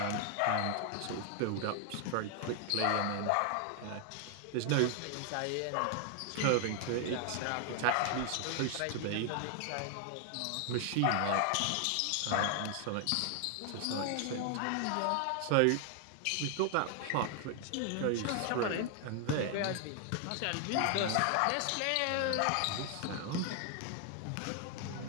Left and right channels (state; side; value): different; both; correlation 0.00